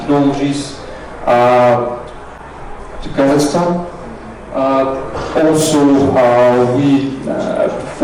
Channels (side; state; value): both; identical; correlation 1.00